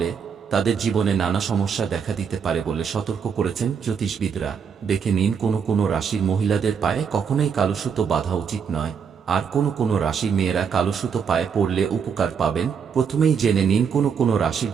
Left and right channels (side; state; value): left; quieter; 6.8 dB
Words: তাদের জীবনে নানা সমস্যা দেখা দিতে পারে বলে সতর্ক করেছেন জ্যোতিষবিদরা। দেখে নিন কোন কোন রাশির মহিলাদের পায়ে কখনোই কালো সুতো বাঁধা উচিত নয়, আর কোন কোন রাশির মেয়েরা কালো সুতো পায়ে পরলে উপকার পাবেন। প্রথমেই জেনে নিন কোন কোন রাশির